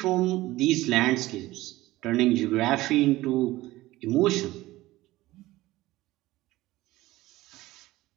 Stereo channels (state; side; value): quieter; left; 17.8 dB